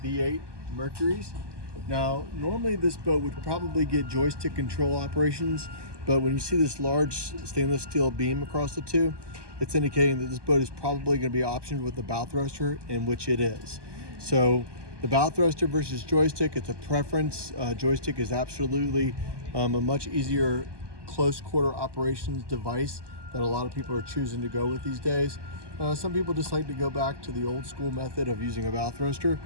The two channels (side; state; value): left; late; 1.2 ms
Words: V8 Mercuries. Now, normally this boat would probably get joystick control operations, but when you see this large stainless steel beam across the two, it's indicating that this boat is probably going to be optioned with the bow thruster, in which it is. So the bow thruster versus joystick, it's a preference. Joystick is absolutely a much easier close quarter operations device that a lot of people are choosing to go with these days. Some people just like to go back to the old school method of using a bow thruster,